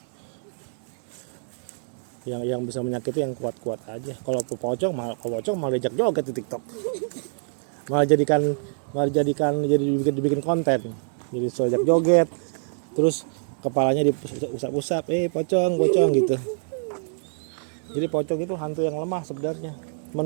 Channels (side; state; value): left; silent; digital silence